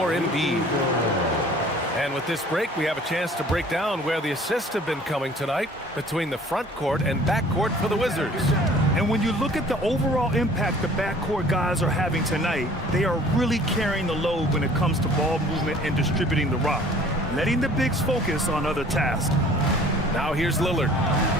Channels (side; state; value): both; normal; correlation 0.51